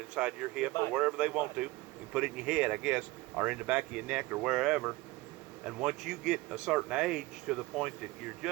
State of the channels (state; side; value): quieter; left; 20.5 dB